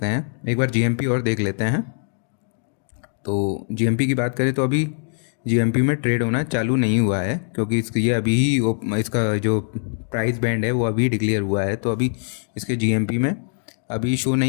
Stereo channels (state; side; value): silent; right; digital silence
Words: हैं। एक बार जीएमपी और देख लेते हैं। तो जीएमपी की बात करें तो अभी जीएमपी में ट्रेड होना चालू नहीं हुआ है, क्योंकि ये अभी ही इसका जो प्राइस बैंड है वो अभी डिक्लेयर हुआ है। तो अभी इसके जीएमपी में अभी शो